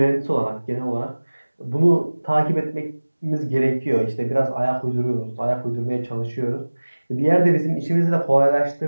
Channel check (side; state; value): both; inverted; correlation -1.00